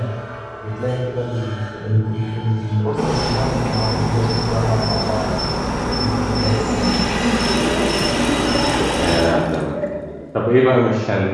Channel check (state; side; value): identical; both; correlation 1.00